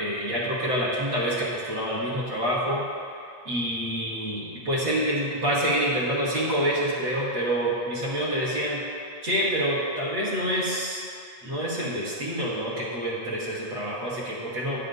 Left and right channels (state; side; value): late; left; 8.1 ms